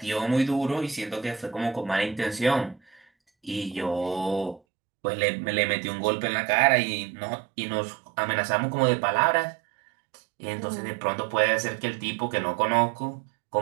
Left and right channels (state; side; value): drops out; left; at 4.6 s